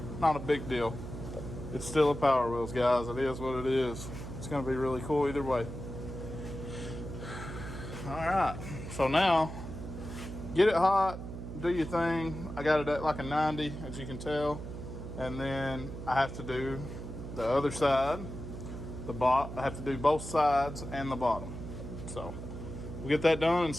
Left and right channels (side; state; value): right; noise; hum, 9 dB below the sound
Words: Not a big deal. It's still a Power Wheels, guys. It is what it is. It's going to be really cool either way. Alright, so now, get it hot, do your thing. I got it at like a 90, as you can tell. And then I have to do the other side, I have to do both sides and the bottom. So, we'll get that done and